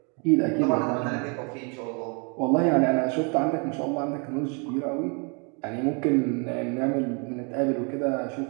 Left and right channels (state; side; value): quieter; left; 34.6 dB